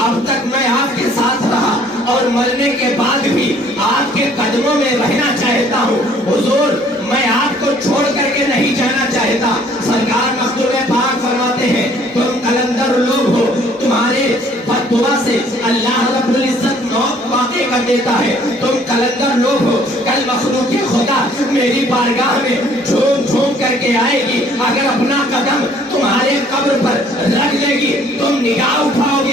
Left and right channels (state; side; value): normal; both; correlation 0.59